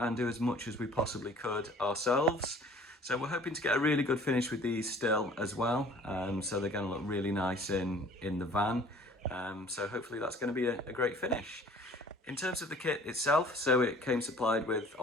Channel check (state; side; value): normal; both; correlation 0.50